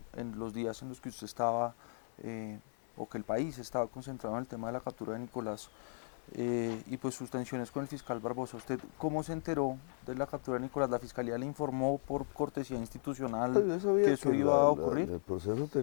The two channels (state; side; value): silent; right; 53 dB below the other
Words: en los días en los que usted estaba, o que el país estaba concentrado en el tema de la captura de Nicolás, y pues sus tensiones con el fiscal Barbosa. ¿Usted cómo se enteró de la captura de Nicolás? ¿La fiscalía le informó por cortesía institucional Yo sabía que eso iba a ocurrir? el proceso